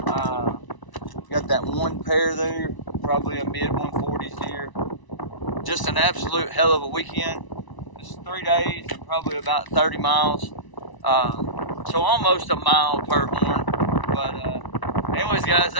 Got that one pair there, probably a mid 140s deer. Just an absolute hell of a weekend. It's 3 days and probably about 30 miles. So almost a mile per horn. But anyways guys,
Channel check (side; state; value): right; late; 1.0 ms